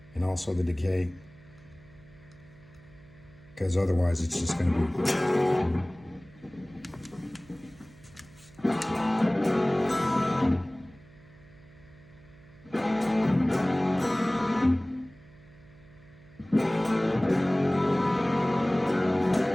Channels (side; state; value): right; noise; hum, 24 dB below the sound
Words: And also the decay, because otherwise it's just going to be...